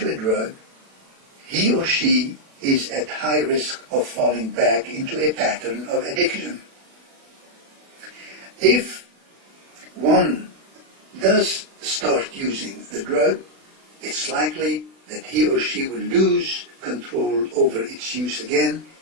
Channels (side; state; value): left; late; 36 ms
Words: a drug, he or she is at high risk of falling back into a pattern of addiction. If one does start using the drug, it's likely that he or she will lose control over its use again,